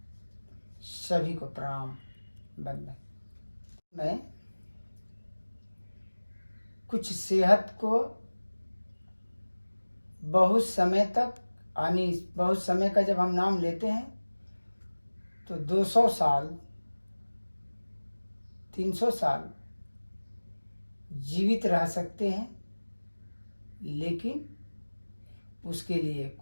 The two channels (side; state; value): both; inverted; correlation -1.00